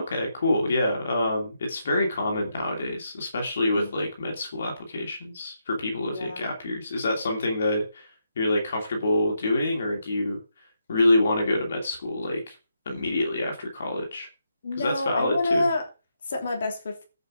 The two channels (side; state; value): both; inverted; correlation -0.82